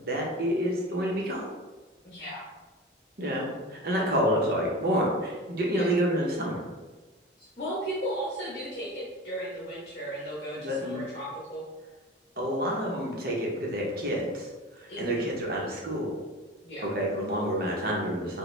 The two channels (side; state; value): both; normal; correlation 0.32